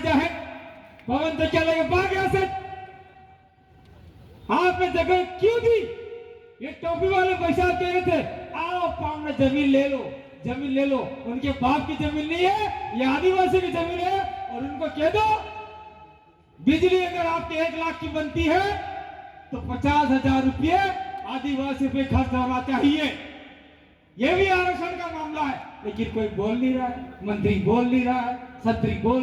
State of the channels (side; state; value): both; identical; correlation 1.00